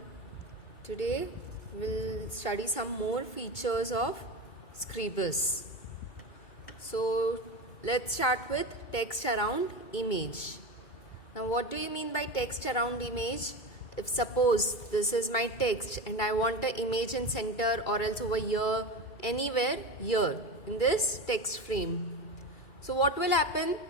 Today we'll study some more features of Scribus. So let's start with text around image. Now what do you mean by text around image? If suppose this is my text and I want an image in center or else over here, anywhere here in this text frame. So what will happen?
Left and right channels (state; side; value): late; right; 2.3 ms